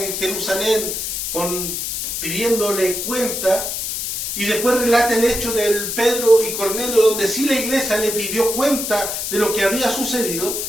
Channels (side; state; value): left; noise; hiss, 3 dB below the sound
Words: Jerusalén pidiéndole cuenta, y después relata el hecho del Pedro y Cornelio, donde sí la iglesia le pidió cuenta de lo que había sucedido,